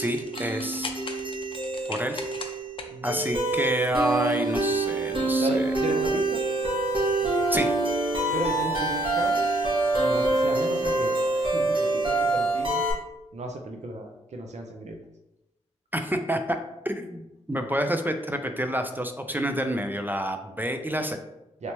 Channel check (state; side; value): normal; both; correlation 0.68